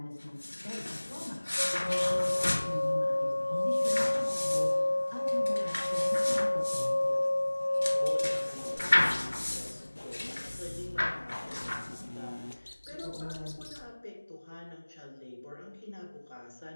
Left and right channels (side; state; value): both; inverted; correlation -1.00